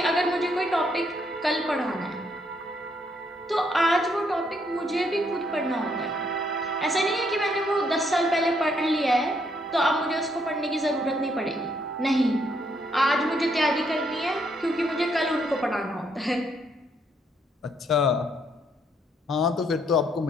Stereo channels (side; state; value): both; normal; correlation 0.72